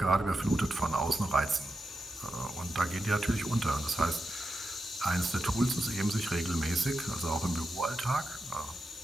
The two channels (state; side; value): normal; both; correlation 0.88